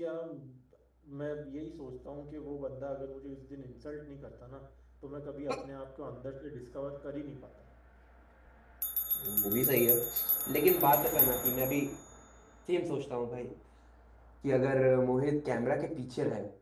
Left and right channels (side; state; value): both; identical; correlation 1.00